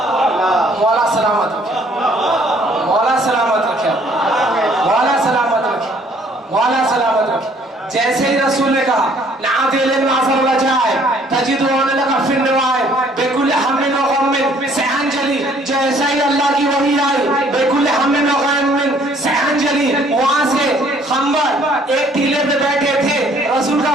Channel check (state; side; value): normal; both; correlation 0.60